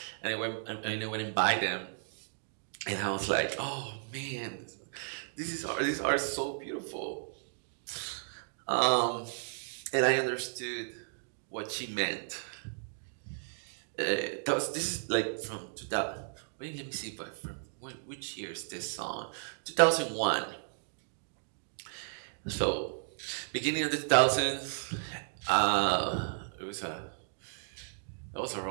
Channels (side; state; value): left; silent; digital silence